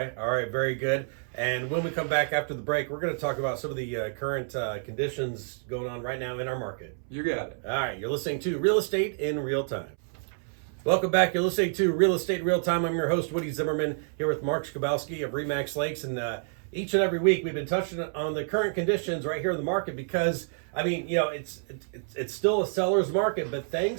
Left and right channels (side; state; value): left; silent; 59 dB below the other